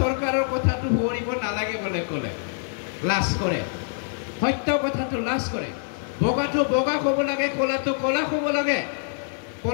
কথাটো ভৰিব নালাগে বলে ক'লে লাজ কৰে। সত্য কথাটো লাজ কৰে। বগাটো বগা ক'ব লাগে, ক'লাটো ক'লা ক'ব লাগে।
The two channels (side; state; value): right; silent; digital silence